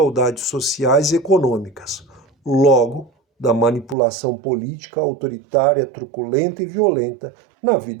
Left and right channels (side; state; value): left; drops out; at 4.0 s